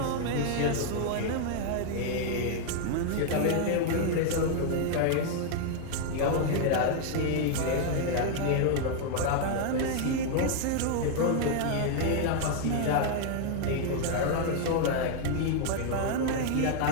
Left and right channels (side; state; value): both; different; correlation 0.00